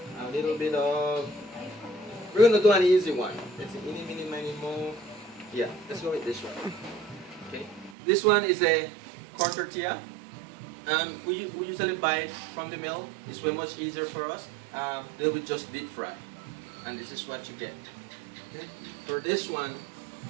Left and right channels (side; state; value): left; drops out; at 8.0 s